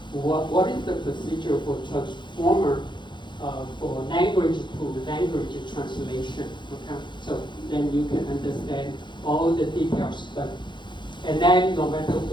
What is the procedure for transformer for language to language translation, okay? So then you can understand all the details, and then no matter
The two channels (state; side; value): late; right; 0.23 ms